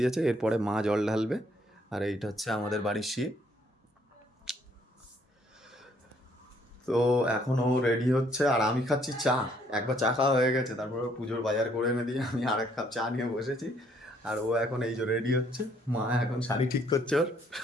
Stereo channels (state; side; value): normal; both; correlation 0.66